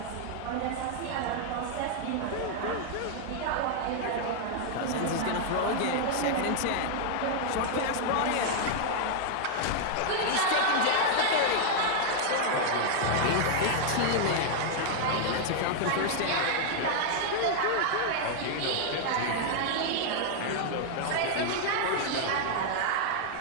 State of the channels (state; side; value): different; both; correlation 0.00